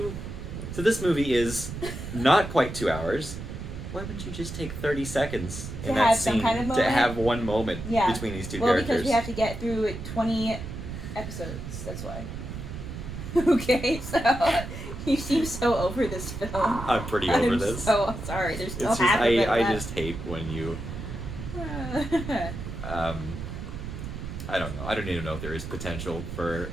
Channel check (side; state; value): right; noise; rumble, 8 dB below the sound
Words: So this movie is not quite 2 hours. Why wouldn't you just take 30 seconds in that scene to have one moment between these two characters? Well, because we have to get through 20 episodes. That's why. Okay, so you seem so over this film. I'm pretty over this. So sorry. There's no half of it I left. just hate when you. I don't know. I don't even know if there is potential for